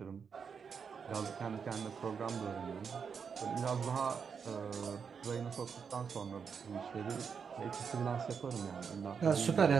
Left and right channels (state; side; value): quieter; left; 6.3 dB